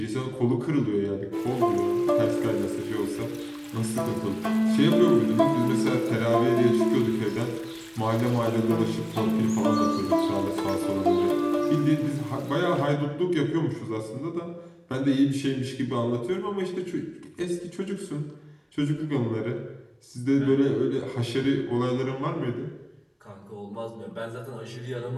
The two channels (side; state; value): both; identical; correlation 1.00